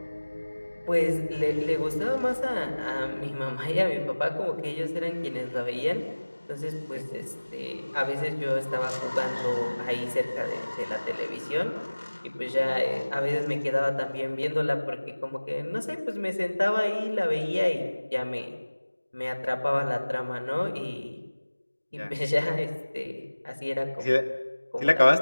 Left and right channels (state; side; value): inverted; both; correlation -1.00